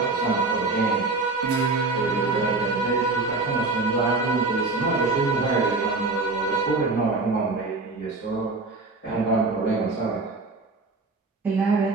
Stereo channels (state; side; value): quieter; left; 3.6 dB